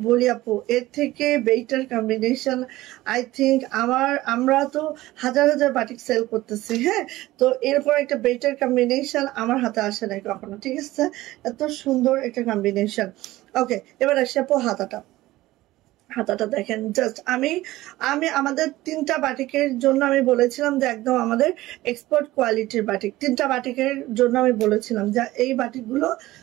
বলি আপু, এর থেকে বেটার কম্বিনেশন আই থিঙ্ক আমরা তো হাজার হাজার বাটিক সেল করতেছি, হ্যাঁ, তো এরপর একটা বেটার কম্বিনেশন আমার হাতে আসে নাই কখনো, ঠিক আছে, এত সুন্দর একটা কম্বিনেশন। ওকে, এবার আসি আপু হাতাটা দেখেন, জাস্ট আমি আমাদের 3টা বাটিকের জন্য আমি বলেছিলাম যে একদম আমাদের এক্সপোর্ট কোয়ালিটির বাটিক, 3টা বাটিকের জন্য আমি বলেছিলাম যে এই বাটিকগুলো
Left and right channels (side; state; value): left; quieter; 17.2 dB